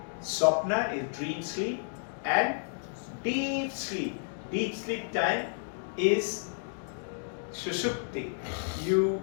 Swapna is dream sleep. And deep sleep. Deep sleep time is Sushupti. You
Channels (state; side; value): silent; right; digital silence